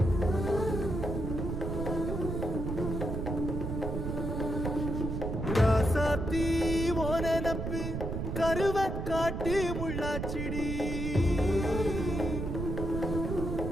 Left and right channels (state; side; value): noise; right; rumble, 3 dB below the sound